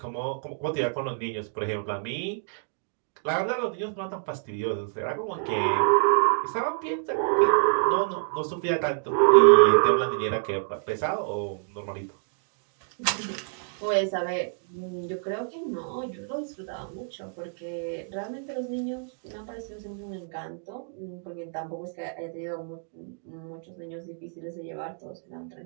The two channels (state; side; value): silent; left; digital silence